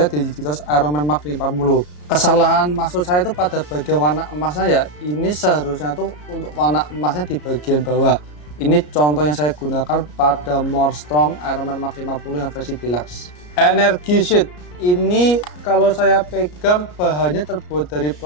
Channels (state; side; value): late; right; 33 ms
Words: di Digitos Iron Man Mark 50. Kesalahan maksud saya itu pada bagian warna emasnya ya. Ini seharusnya tuh untuk warna emasnya di bagian bawah. Ini contoh yang saya gunakan pada More Strong Iron Man Mark 50 yang versi deluxe. Energy Sheet ini kalau saya pegang bahannya terbuat dari